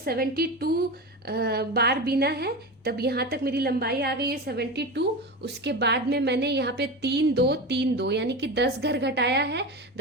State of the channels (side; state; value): both; normal; correlation 0.24